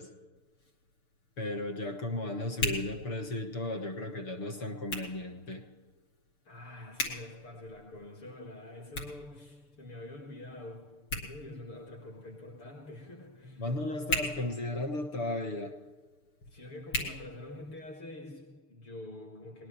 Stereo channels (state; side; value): late; right; 6.8 ms